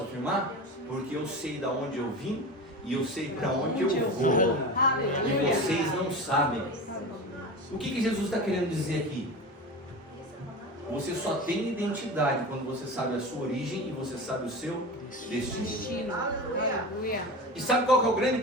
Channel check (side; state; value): both; normal; correlation 0.29